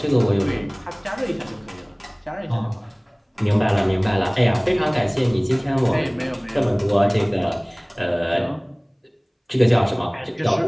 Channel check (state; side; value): identical; both; correlation 1.00